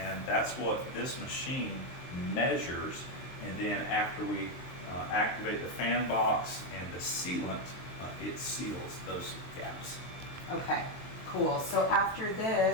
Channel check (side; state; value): right; late; 23 ms